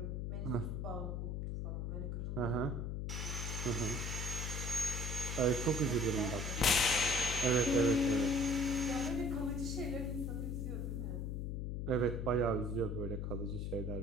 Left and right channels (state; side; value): noise; left; hum, 2 dB below the sound